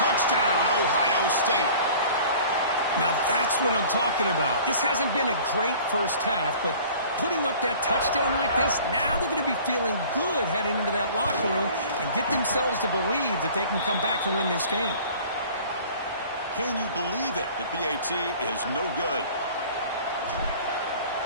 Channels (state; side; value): inverted; both; correlation -0.47